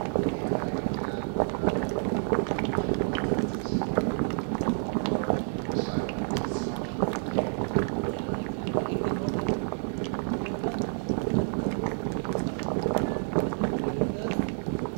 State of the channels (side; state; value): left; silent; 59 dB below the other